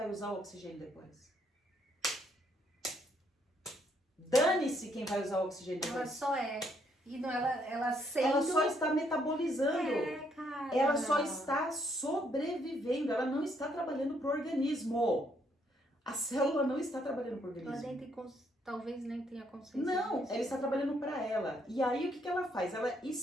usar o oxigênio depois. Dane-se quem vai usar o oxigênio depois. Ela só é. E não, ela sendo... Ela só está metabolizando. Cara. Ela só está sobrevivendo. Ela não está trabalhando para o organismo. A célula não está trabalhando para o organismo. Ela nem tem talvez nem tenha consciência. Não, ela está trabalhando para ela. E aí o que ela faz? Ela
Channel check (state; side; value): normal; both; correlation 0.71